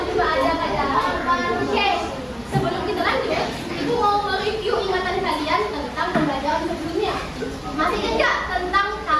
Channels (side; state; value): both; identical; correlation 1.00